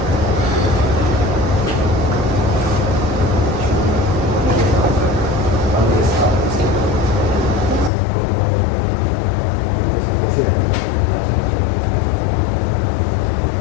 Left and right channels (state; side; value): drops out; right; at 7.9 s